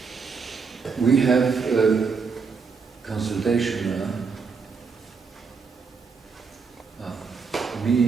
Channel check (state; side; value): quieter; left; 5.2 dB